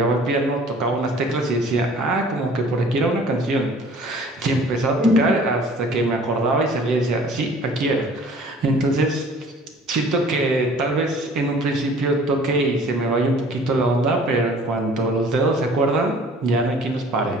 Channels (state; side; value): normal; both; correlation 0.50